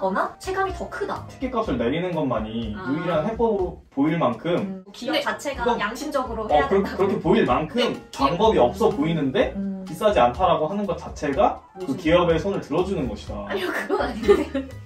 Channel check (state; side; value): identical; both; correlation 1.00